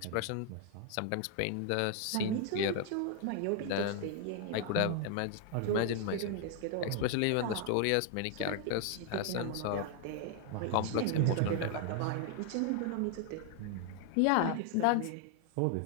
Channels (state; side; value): different; both; correlation 0.00